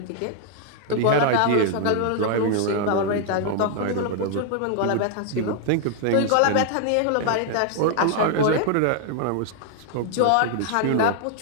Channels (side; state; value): both; different; correlation 0.00